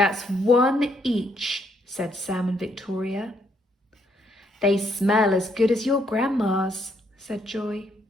1 each," said Sam and Victoria. "They smell as good as your Grandma's," said Joy.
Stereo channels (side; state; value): both; normal; correlation 0.72